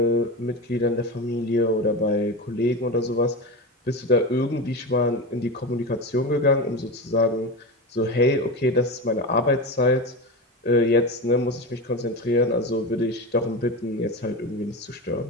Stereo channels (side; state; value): both; normal; correlation 0.22